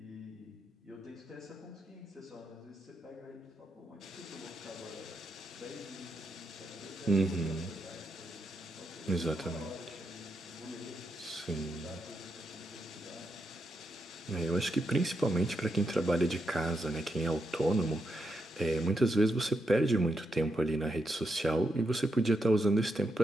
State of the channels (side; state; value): both; normal; correlation 0.83